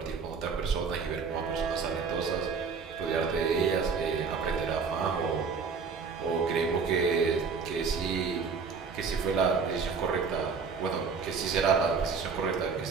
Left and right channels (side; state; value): left; quieter; 5.3 dB